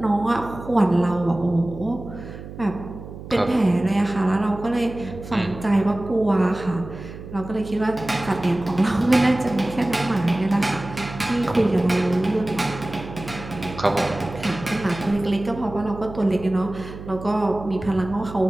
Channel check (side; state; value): right; noise; hum, 13 dB below the sound